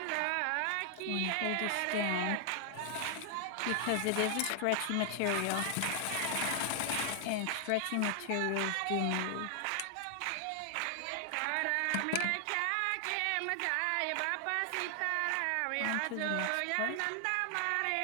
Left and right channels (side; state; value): both; different; correlation 0.00